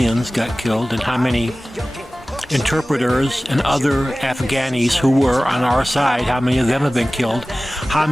got killed and how many interpreters and other Afghanis who were on our side, how many of them have been killed, how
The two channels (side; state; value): both; normal; correlation 0.97